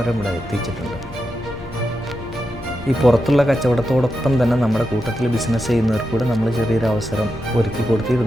ഇവിടെ എത്തിച്ചിട്ടുണ്ട്. ഈ പുറത്തുള്ള കച്ചവടത്തോടൊപ്പം തന്നെ നമ്മുടെ കൂട്ടത്തിൽ ബിസിനസ് ചെയ്യുന്നവർക്ക് കൂടെ നമ്മൾ ചെറിയൊരു അവസരം ഒരുക്കി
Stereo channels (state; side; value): noise; left; hum, 18 dB below the sound